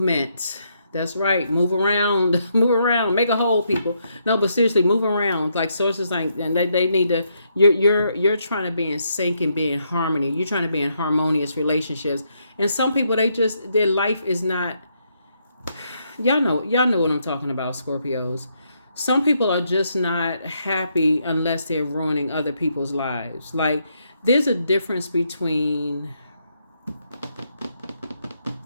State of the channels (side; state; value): both; inverted; correlation -0.77